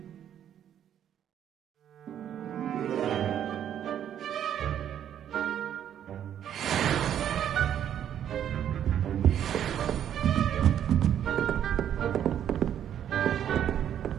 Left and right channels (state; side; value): quieter; left; 9.9 dB